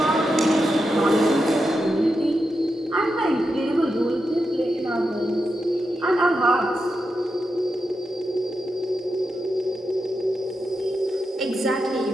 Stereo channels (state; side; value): normal; both; correlation 0.87